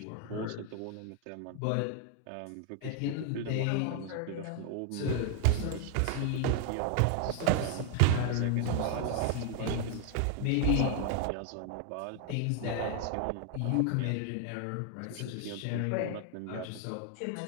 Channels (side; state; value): both; different; correlation 0.00